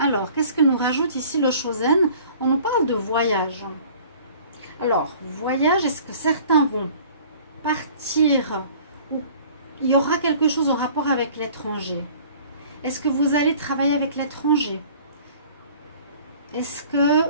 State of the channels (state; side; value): inverted; both; correlation -0.50